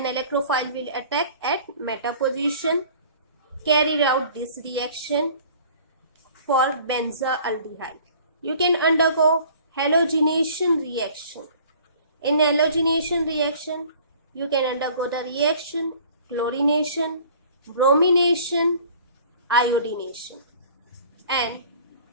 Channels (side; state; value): both; inverted; correlation -0.50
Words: electrophile will attack at meta position. Carry out this reaction for benzaldehyde. You can undergo halogenation reaction. In halogenation reaction, you can undergo the reaction chlorination, bromination, iodination, and